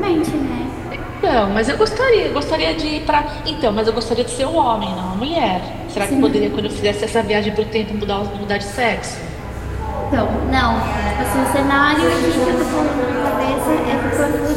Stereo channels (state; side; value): identical; both; correlation 1.00